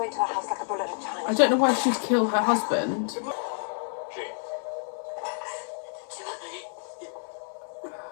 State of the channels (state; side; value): silent; right; 59 dB below the other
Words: into a house like a bullet in China. I don't know why she'd kill her husband. Gene.